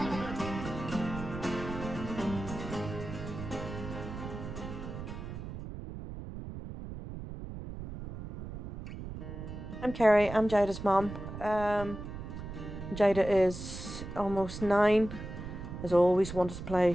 I'm Kerry, I'm Jada's mum. Jada is almost 9, has always wanted to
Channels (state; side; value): noise; right; rumble, 9 dB below the sound